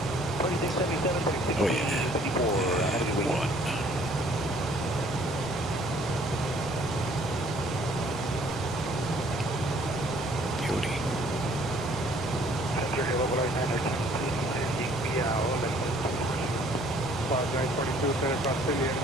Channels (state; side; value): normal; both; correlation 0.59